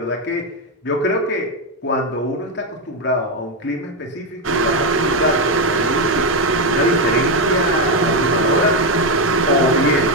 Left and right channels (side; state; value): both; normal; correlation 0.07